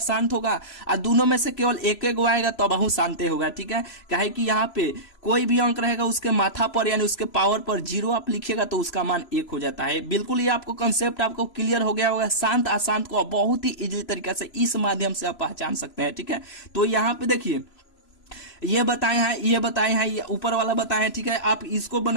होगा, और दोनों में से केवल एक एक आएगा तब बहु शांत होगा, ठीक है। काहे कि यहाँ पे कोई भी अंक रहेगा उसके माथा पर यानी उसके पावर पर 0 आप लिखिएगा तो उसका मान 1 हो जाता है। बिल्कुल ये आपको कंसेप्ट आपको क्लियर हो गया होगा। शांत अशांत को बहुत ही इजीली तरीके से इस माध्यम से आप पहचान सकते हैं, ठीक है। तो यहाँ पे देखिए ये बताए हैं, ये ऊपर वाला बताए हैं, ठीक है। आप इसको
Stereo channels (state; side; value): late; right; 3.0 ms